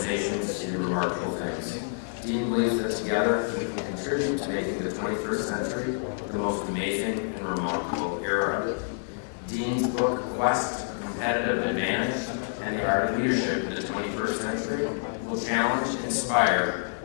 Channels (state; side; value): silent; right; digital silence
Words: to do remarkable things. Dean believes that together we can contribute to making the 21st century the most amazing and remarkable era. Dean's book, Quest, Competitive Advantage, and the Art of Leadership in the 21st Century will challenge, inspire